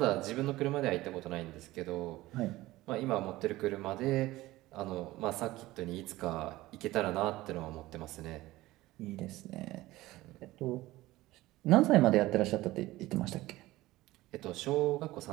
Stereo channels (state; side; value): quieter; left; 17.8 dB